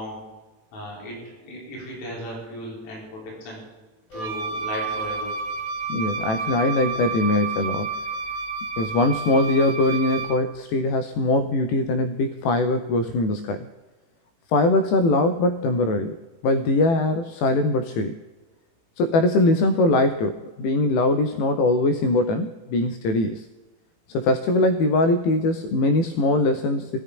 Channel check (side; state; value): right; late; 18 ms